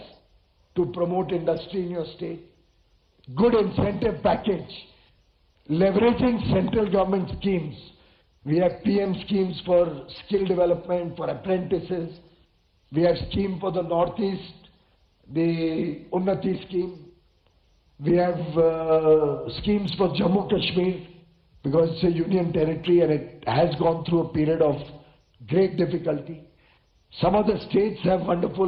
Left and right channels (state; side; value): identical; both; correlation 1.00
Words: to promote industry in your state, good incentive package, leveraging central government schemes. We have PM schemes for skill development, for apprentices. We have scheme for the Northeast, the Unnati scheme. We have schemes for Jammu Kashmir because it's a union territory and it has gone through a period of great difficulty. Some of the states have